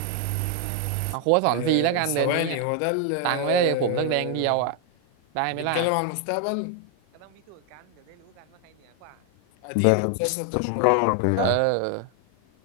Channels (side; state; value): both; different; correlation 0.01